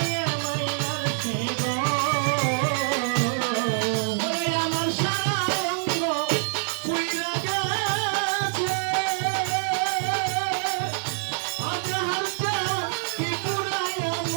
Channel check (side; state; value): left; silent; 61 dB below the other